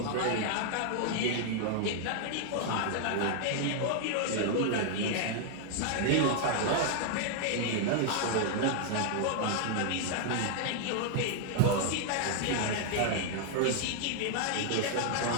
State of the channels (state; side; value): different; both; correlation 0.00